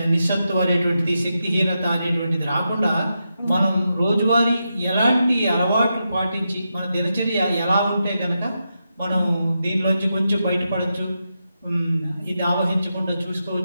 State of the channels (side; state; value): both; inverted; correlation -0.87